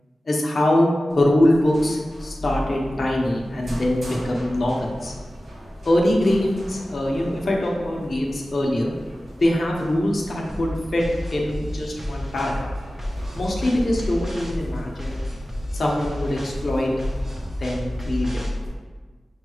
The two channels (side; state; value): both; normal; correlation 0.95